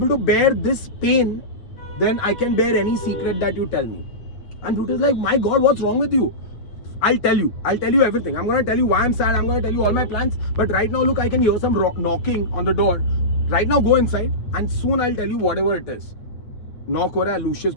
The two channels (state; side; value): late; right; 9.1 ms